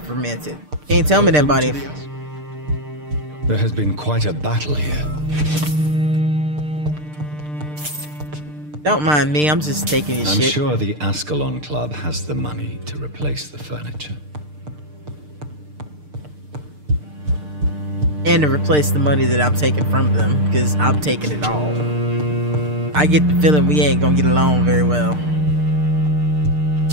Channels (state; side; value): late; left; 6.6 ms